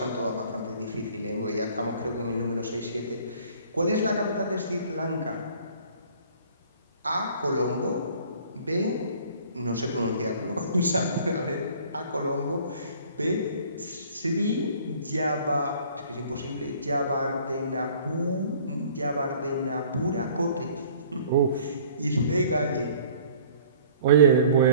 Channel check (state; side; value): inverted; both; correlation -0.52